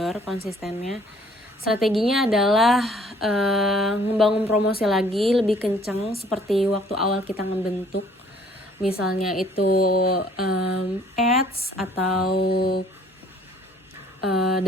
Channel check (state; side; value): normal; both; correlation 0.58